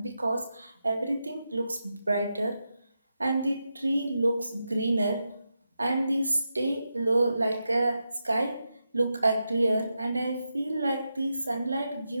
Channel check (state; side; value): inverted; both; correlation -0.87